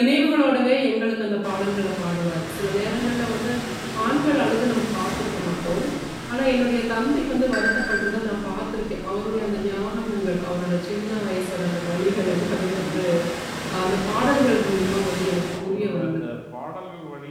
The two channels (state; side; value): identical; both; correlation 1.00